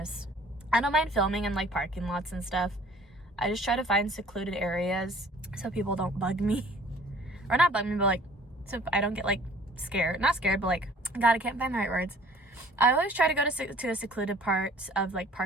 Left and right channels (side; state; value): both; normal; correlation 0.53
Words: I don't mind filming in like parking lots and stuff. I just try to find secluded areas so people don't bug me. Or not bug me, but like, so I don't get like scared. Not scared, but like, God, I can't find the right words. I always try to go to a secluded part of like